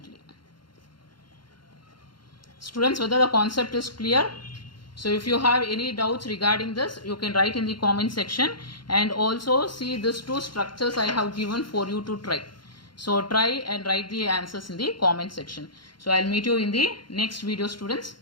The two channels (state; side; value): late; right; 0.72 ms